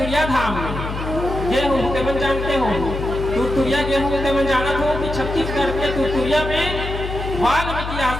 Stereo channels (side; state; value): left; noise; hum, 6 dB below the sound